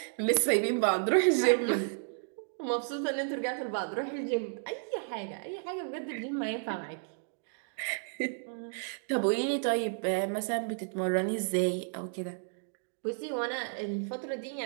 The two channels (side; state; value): left; silent; digital silence